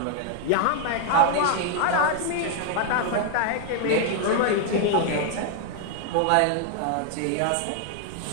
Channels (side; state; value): both; different; correlation 0.00